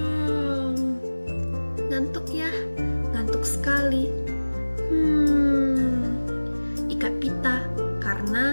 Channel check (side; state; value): both; inverted; correlation -1.00